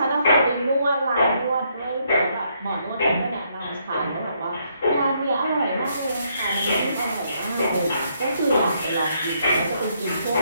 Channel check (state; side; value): inverted; both; correlation -0.73